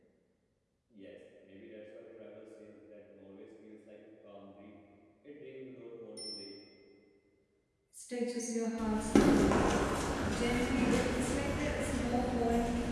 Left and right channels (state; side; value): identical; both; correlation 1.00